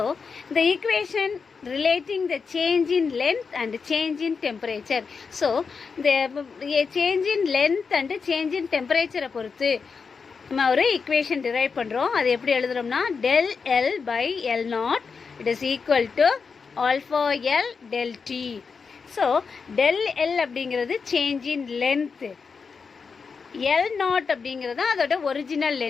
the equation relating the change in length and change in temperature. So the change in length and change in temperature பொறுத்து நம்ம ஒரு equation derive பண்ணுறோம். அது எப்படி எழுதுறோம்னா del L by L naught it is equal to alpha L del T. So del L அப்படிங்கிறது change in length, L naught அப்படிங்கிறது அதோட ஒரிஜினல்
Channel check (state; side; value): quieter; right; 5.3 dB